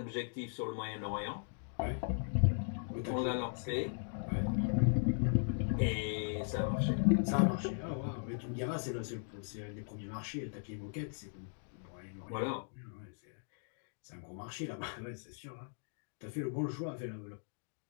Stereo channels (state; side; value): silent; right; digital silence